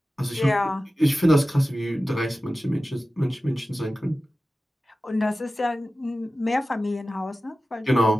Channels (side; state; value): both; normal; correlation 0.95